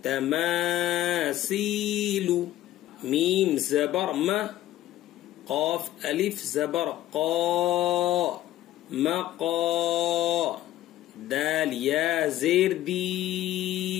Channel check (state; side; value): quieter; right; 14.1 dB